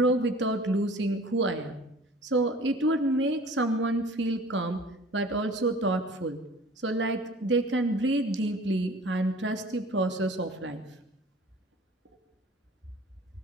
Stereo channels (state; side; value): normal; both; correlation 0.46